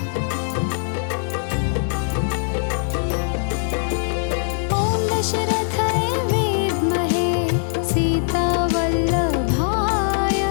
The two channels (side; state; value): right; silent; digital silence